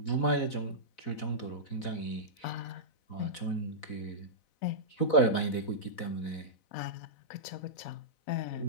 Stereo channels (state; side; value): late; right; 4.0 ms